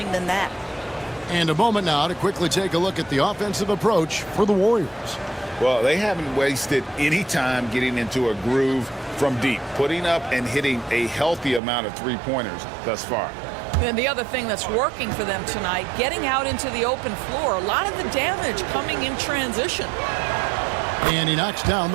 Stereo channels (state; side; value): drops out; left; at 11.6 s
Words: than that. And a moment now to quickly take a look at the offensive approach for the Warriors. Well, they haven't wasted any time getting into a groove from deep, putting up and hitting a healthy amount of 3-pointers thus far. And the other thing that's working for them tonight, getting out into the open floor. A lot of the damage coming in transition. And he knocks down